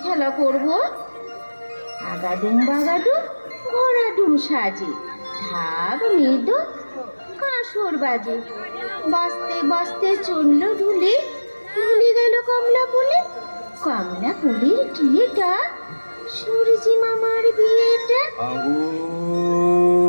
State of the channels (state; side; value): inverted; both; correlation -1.00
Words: খেলা করব। আগাডুম বাগাডুম ঘোড়াডুম সাজে, ঢাক মৃদু কাঁসর বাজে, বাজতে বাজতে চলল ঢুলে, ঢুলে গেল কমলা ফুলে, কমলা ফুলের টিয়েটা সূর্যি মামার বিয়েটা।